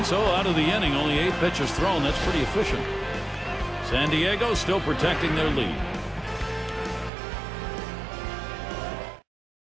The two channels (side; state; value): left; drops out; at 7.1 s